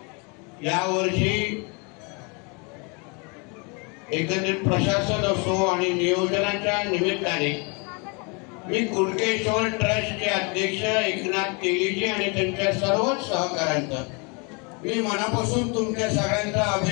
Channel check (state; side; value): quieter; right; 32.2 dB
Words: या वर्षी एकंदरीत प्रशासन असो आणि नियोजनाच्या निमित्ताने मी कुणकेश्वर ट्रस्टचे अध्यक्ष एकनाथ तेलीजी आणि त्यांच्या सर्वच सहकाऱ्यांचं मी मनापासून तुमच्या सगळ्यांचं